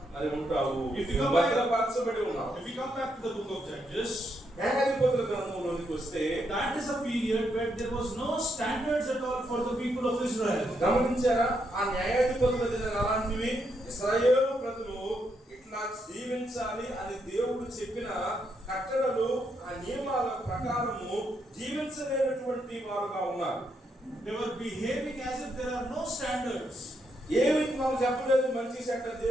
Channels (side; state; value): both; normal; correlation 0.79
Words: మరి ఉంటావు. If you come భద్రపరచబడి ఉన్నావు. If you come back to the book of Judges, న్యాయాధిపతుల గ్రంథంలోనికి వస్తే, that is a period where there was no standards at all for the people of Israel. గమనించారా? ఆ న్యాయాధిపతుల దినాలు అలాంటివి. ఇశ్రాయేలు ప్రజలు ఇట్లా జీవించాలి అని దేవుడు చెప్పిన కట్టడలు, ఆ నియమాల ప్రకారము జీవించలేనటువంటి వారుగా ఉన్నారు. They were behaving as if there are no standards. ఏమి మనం చెప్పలేదు మంచి చెడ్డ